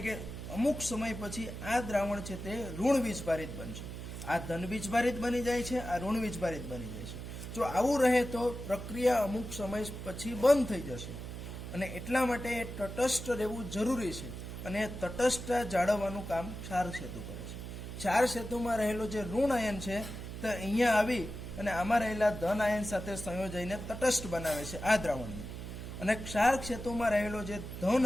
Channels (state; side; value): noise; right; hum, 8 dB below the sound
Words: કે અમુક સમય પછી આ દ્રાવણ છે તે ઋણ વીજભારિત બનશે. આ ધન વીજભારિત બની જાય છે, આ ઋણ વીજભારિત બની જાય છે. જો આવું રહે તો પ્રક્રિયા અમુક સમય પછી બંધ થઈ જશે અને એટલા માટે એ તટસ્થ રહેવું જરૂરી છે. અને તટસ્થતા જાળવવાનું કામ ક્ષાર સેતુ કરે છે. ક્ષાર સેતુમાં રહેલો જે ઋણ આયન છે તે અહીંયા આવી અને આમાં રહેલા ધન આયન સાથે સંયોજાઈને તટસ્થ બનાવે છે આ દ્રાવણને. અને ક્ષાર ક્ષેત્રમાં રહેલો જે ધન